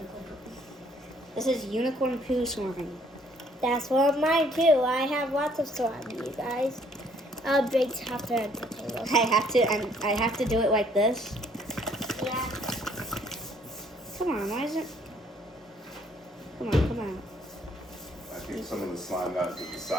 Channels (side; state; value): both; normal; correlation 0.63